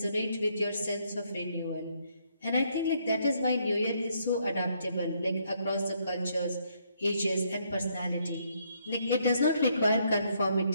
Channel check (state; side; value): inverted; both; correlation -0.72